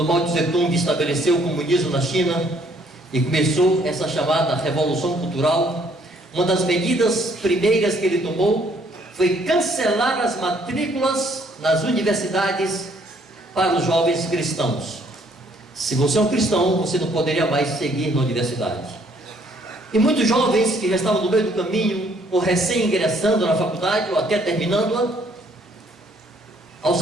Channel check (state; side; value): normal; both; correlation 0.65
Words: Mao Tse-tung estabeleceu o comunismo na China e começou essa chamada Revolução Cultural. Uma das medidas primeiras que ele tomou foi cancelar as matrículas nas universidades para os jovens cristãos. Se você é um cristão, você não poderia mais seguir na universidade. E muitos jovens que já estavam no meio do caminho, ou recém-ingressando na faculdade, ou até terminando-a, ao